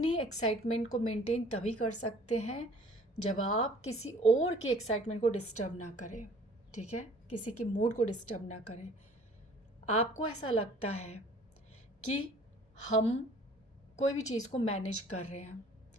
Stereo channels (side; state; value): both; normal; correlation 0.52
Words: एक्साइटमेंट को मेंटेन तभी कर सकते हैं जब आप किसी और की एक्साइटमेंट को डिस्टर्ब ना करें। ठीक है, किसी के मूड को डिस्टर्ब ना करें। आपको ऐसा लगता है कि हम कोई भी चीज़ को मैनेज कर रहे हैं,